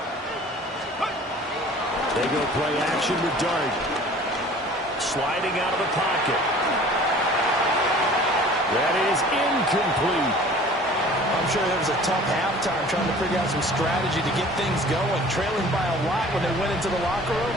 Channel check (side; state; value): both; normal; correlation 0.47